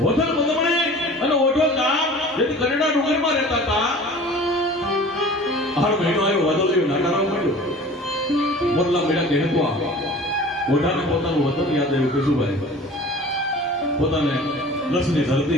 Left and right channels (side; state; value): both; normal; correlation 0.43